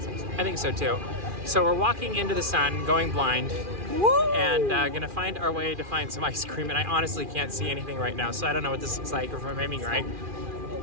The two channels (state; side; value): late; left; 2.4 ms